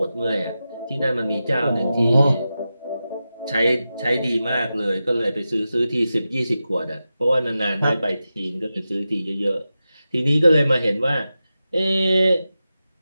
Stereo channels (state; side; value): inverted; both; correlation -0.92